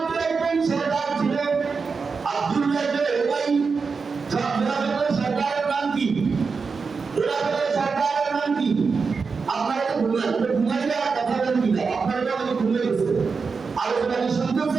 একজন সরদার ছিল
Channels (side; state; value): left; quieter; 5.0 dB